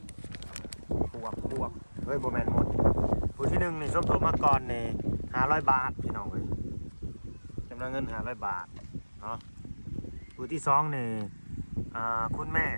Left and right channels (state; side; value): inverted; both; correlation -1.00